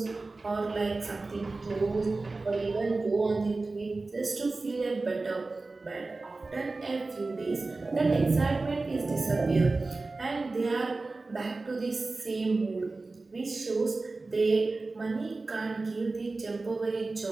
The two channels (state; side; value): quieter; left; 3.5 dB